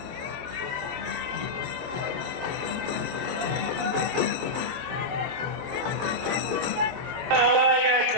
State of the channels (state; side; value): late; left; 22 ms